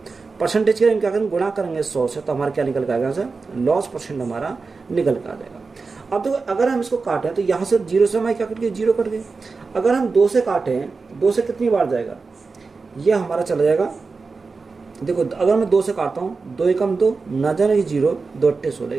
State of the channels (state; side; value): quieter; left; 4.3 dB